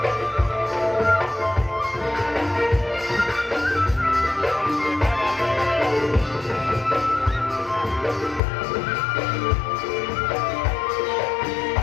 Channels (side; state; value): right; drops out; at 8.4 s